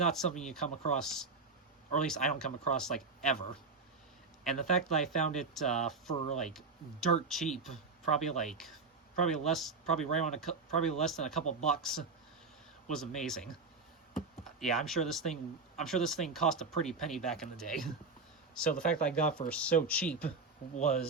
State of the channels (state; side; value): quieter; left; 4.2 dB